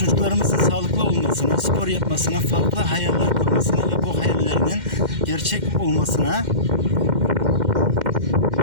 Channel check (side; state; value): left; late; 2.1 ms